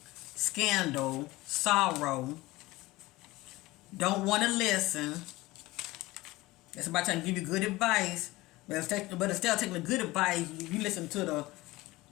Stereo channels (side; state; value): right; quieter; 19.8 dB